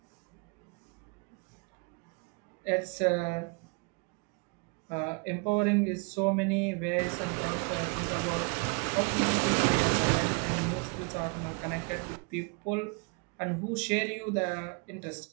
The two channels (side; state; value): left; quieter; 33.3 dB